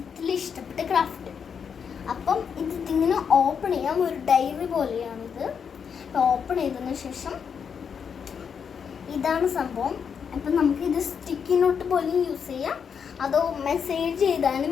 ഇഷ്ടപ്പെട്ട ക്രാഫ്റ്റ്. അപ്പം ഇതിങ്ങനെ ഓപ്പൺ ചെയ്യാം. ഒരു ഡയറി പോലെയാണിത്. അപ്പം ഓപ്പൺ ചെയ്തതിന് ശേഷം ഇതാണ് സംഭവം. അപ്പം നമുക്കിത് സ്റ്റിക്കി നോട്ട് പോലെ യൂസ് ചെയ്യാം, അതോ മെസ്സേജ്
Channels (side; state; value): right; quieter; 6.9 dB